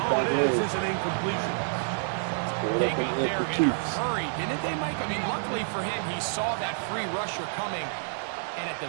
it is an incompletion. They got there in a hurry, didn't they, Mike? I mean, luckily for him, he saw that free rusher coming, and at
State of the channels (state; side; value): silent; left; digital silence